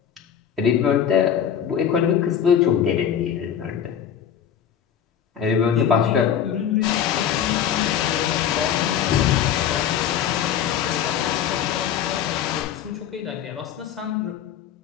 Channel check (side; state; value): right; quieter; 9.0 dB